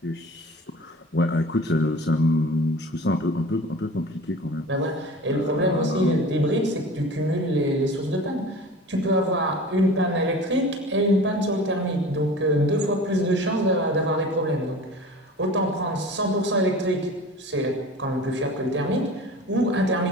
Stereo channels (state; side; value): normal; both; correlation 0.39